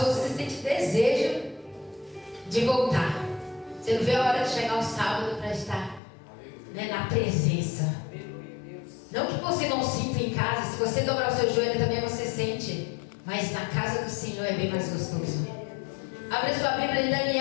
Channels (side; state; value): right; drops out; at 6.0 s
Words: você sente desejo de voltar. Você não vê a hora de chegar o sábado para estar, né, na presença. Não que você não sinta em casa. Se você dobrar o seu joelho também você sente. Mas na casa do Senhor é bem mais gostoso. Abre sua Bíblia em